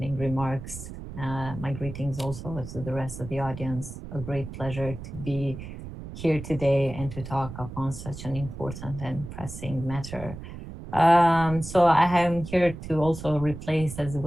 remarks. My greetings also to the rest of the audience. A great pleasure to be here today and to talk upon such an important and pressing matter. So I am here to also replace, as it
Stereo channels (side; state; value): right; noise; rumble, 11 dB below the sound